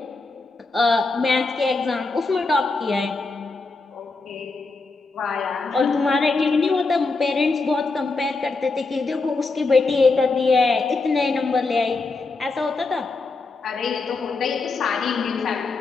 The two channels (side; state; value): right; quieter; 3.8 dB